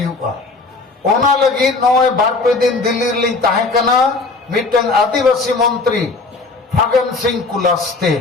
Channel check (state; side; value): quieter; right; 3.7 dB